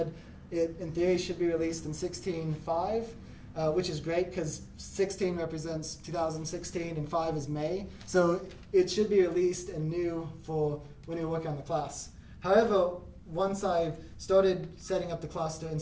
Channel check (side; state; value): both; identical; correlation 1.00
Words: it, in theory, should be released in 16.5, which is great because 16 represents 2016 and 5 is May. So it should be released and new for when you're working on the class. However, once I started setting up the cluster and